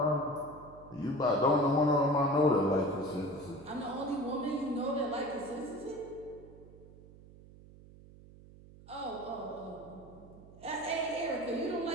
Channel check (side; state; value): right; noise; hum, 20 dB below the sound